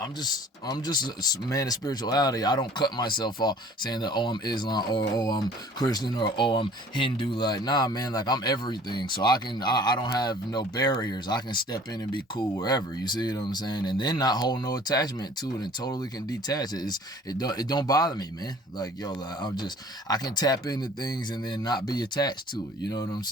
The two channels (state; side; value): normal; both; correlation 0.50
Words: just a man of spirituality. I don't cut myself off saying that, oh, I'm Islam, or oh, I'm Christian, or oh, I'm Hindu. Like, nah, man, like I'm everything. So I don't have no barriers. I can step in and be cool wherever. You see what I'm saying? And then not hold no attachment to it and totally can detach it. It don't bother me, man. Like, yo, like, I can tap into things and then not be attached to it. You know what I'm